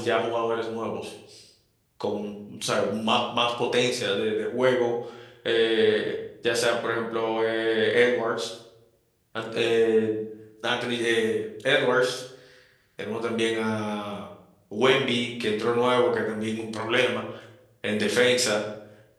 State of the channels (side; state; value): both; identical; correlation 1.00